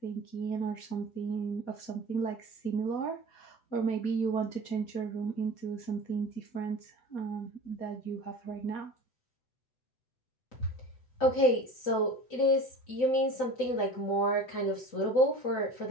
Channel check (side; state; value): right; late; 7.9 ms